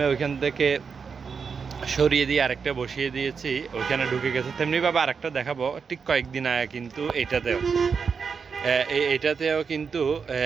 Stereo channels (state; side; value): quieter; left; 5.8 dB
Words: ওইখান থেকে সরিয়ে দিয়ে আরেকটা বসিয়ে দিয়েছি, ওইখানে ঢুকে গেছে। তেমনিভাবে আরেকটা দেখাবো ঠিক কয়েকদিন আগে কিন্তু এটাতেও কিন্তু